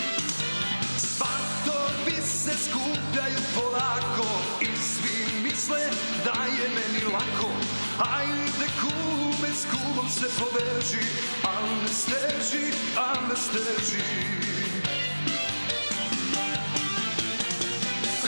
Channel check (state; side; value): inverted; both; correlation -1.00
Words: Svatovi se skupljaju polako i svi misle da je meni lako. Ajde kume, s kumom se poveži, al ne steži, al ne steži.